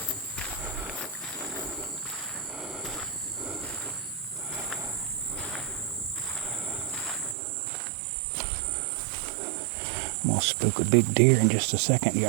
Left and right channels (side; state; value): left; drops out; at 7.4 s